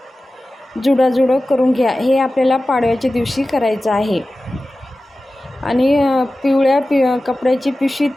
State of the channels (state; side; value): normal; both; correlation 0.95